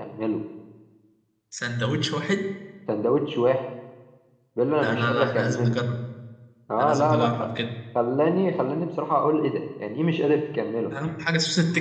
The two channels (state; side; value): identical; both; correlation 1.00